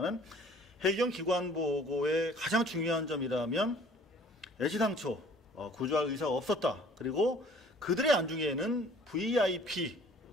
해경 기관보고의 가장 중요한 점이라면 애시당초 구조할 의사가 없었다. 그리고 그들의 안중에는 VIP에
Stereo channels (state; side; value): normal; both; correlation 0.53